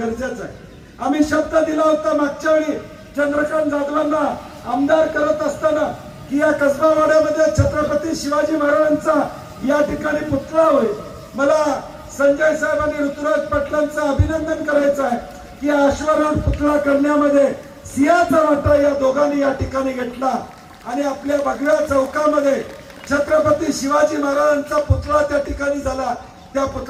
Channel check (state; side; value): identical; both; correlation 1.00